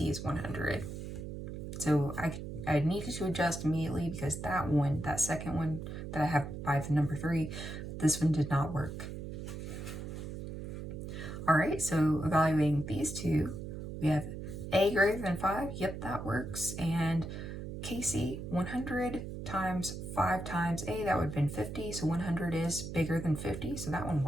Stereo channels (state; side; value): noise; right; hum, 7 dB below the sound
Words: is 100. So I needed to adjust immediately because that one, that second one that I have by the number 3, this one did not work. All right, so evaluating these two, we have A greater than 5, yep, that works, and KC 100 times 5 times A, that would have been 50, so 100 is bigger than 50, so that one